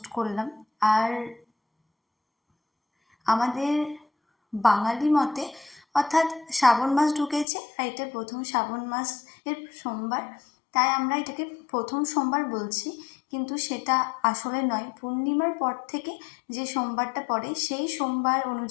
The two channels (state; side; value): drops out; right; at 7.5 s